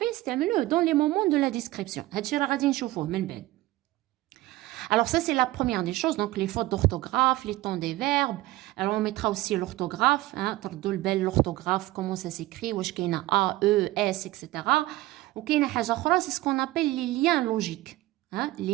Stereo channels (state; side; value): quieter; left; 17.8 dB